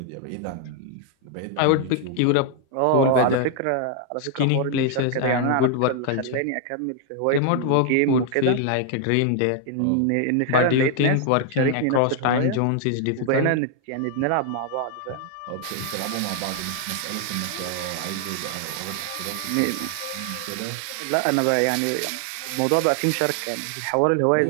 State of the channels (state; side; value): different; both; correlation 0.00